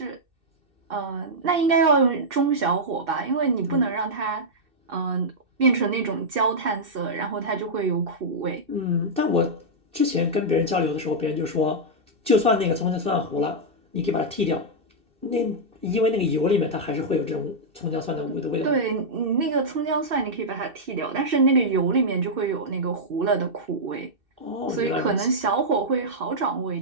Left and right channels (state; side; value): late; left; 2.7 ms